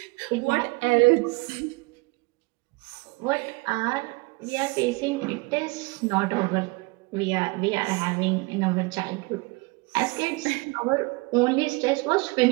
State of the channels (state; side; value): quieter; left; 26.5 dB